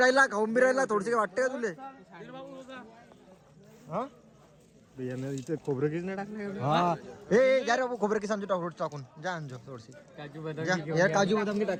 थोडसे वाटते का तुले? इथे खोबरं किस नाही टाकलं हा ए जा रे बाबू खोबरं किसान टाकून टाकून जा आणजो थोडीशी काजू जा यार काजू बदाम की टाक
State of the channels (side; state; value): both; identical; correlation 1.00